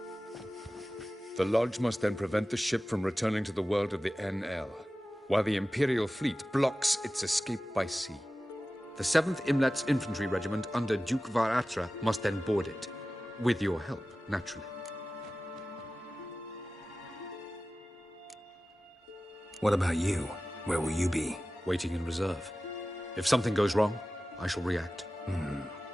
The Lodge must then prevent the ship from returning to the world of the NL, while the Imperial fleet blocks its escape by sea. The 7th Imlet's Infantry Regiment under Duke Varatra must then board it. With your help, naturally. What about you? Where will you be? Waiting in reserve. If something goes wrong, I shall react.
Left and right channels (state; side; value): normal; both; correlation 0.96